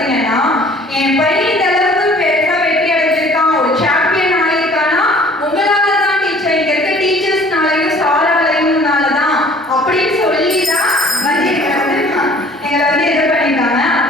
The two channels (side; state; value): both; normal; correlation 0.52